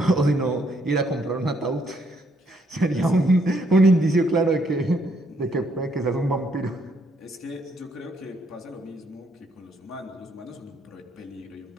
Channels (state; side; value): normal; both; correlation 0.71